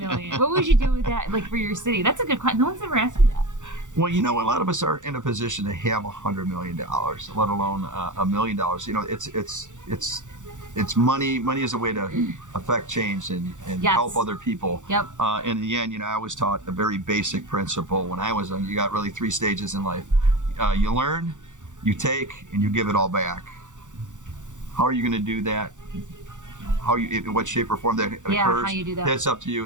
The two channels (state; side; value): late; left; 0.86 ms